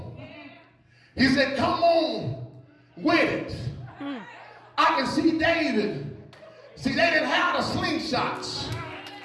He said, come on with it. I can see David. See, they didn't have the slingshots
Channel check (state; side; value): identical; both; correlation 1.00